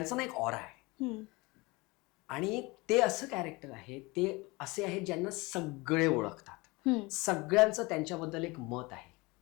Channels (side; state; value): right; quieter; 24.3 dB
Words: ना एक ऑरा आहे आणि ते असं कॅरेक्टर आहे, ते असे आहेत ज्यांना सगळे ओळखतात. सगळ्यांचं त्यांच्याबद्दल एक मत आहे.